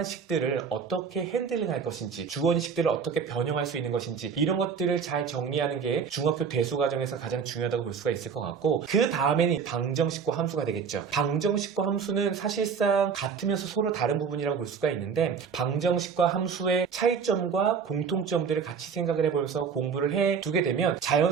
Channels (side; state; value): left; quieter; 6.2 dB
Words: 식들을 어떻게 핸들링할 것인지 주어식들을 어떻게 변형할 수 있는 것인지 이런 것들을 잘 정리하는 게 중학교 대수 과정에서 가장 중요하다고 볼 수가 있을 것 같고 그 다음에는 방정식과 함수가 되겠죠. 방정식과 함수는 사실상 같으면서 서로 다른 부분이라고 볼 수가 있는데 방정식과 함수의 차이점과 공통점들을 같이 생각을 해보면서 공부를 해두게 되면